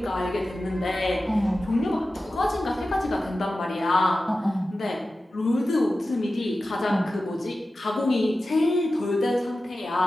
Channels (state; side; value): normal; both; correlation 0.94